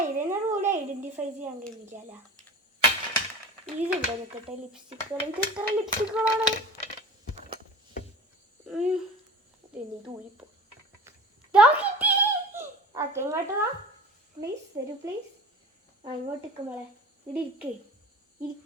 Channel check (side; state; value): both; normal; correlation 0.36